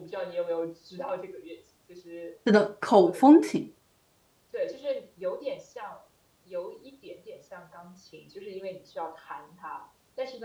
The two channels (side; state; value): both; identical; correlation 1.00